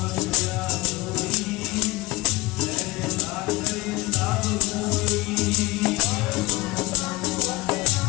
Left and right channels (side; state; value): right; quieter; 21.2 dB